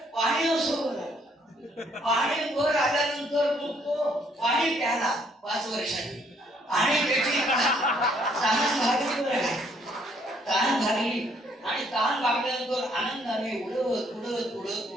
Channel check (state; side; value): normal; both; correlation 0.67